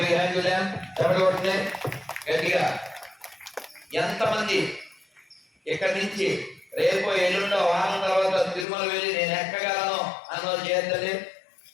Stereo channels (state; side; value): drops out; right; at 8.7 s